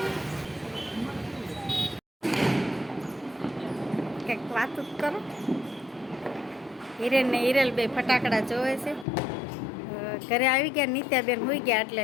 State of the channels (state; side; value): drops out; right; at 9.1 s